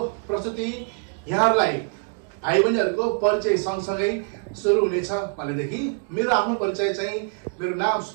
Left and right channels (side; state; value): left; quieter; 38.1 dB